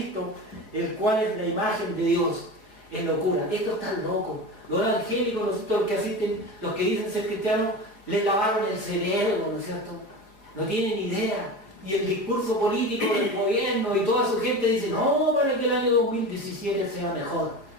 el cual es la imagen de Dios. Es locura. Esto está loco. Los evangélicos, los que asisten, los que dicen ser cristianos, les lavaron el cerebro, ¿no es cierto? No tienen idea. Y el discurso político del gobierno y toda su gente dice, no, para que el año 2017 sea mejor.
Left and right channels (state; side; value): late; right; 5.2 ms